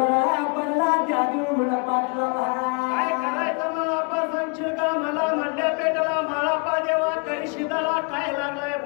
पडला त्या देवगुंडा पाटला काय करायचं मला आपा सांगशील का मला म्हणल्या पेटाला माळापा देवा तरी शिदाला काय लागलाय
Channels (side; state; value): right; quieter; 35.2 dB